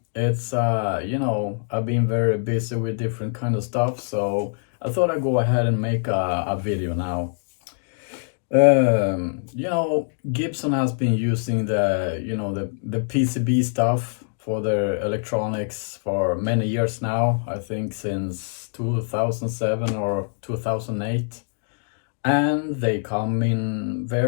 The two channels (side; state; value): right; silent; digital silence